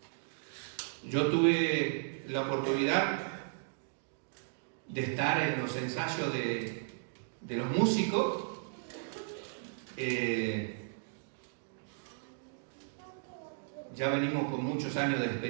Yo tuve la oportunidad de estar en los ensayos de los músicos. Ya venimos con muchos años de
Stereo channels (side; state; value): left; silent; digital silence